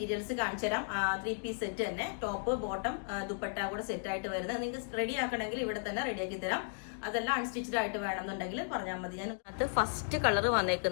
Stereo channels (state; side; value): silent; right; digital silence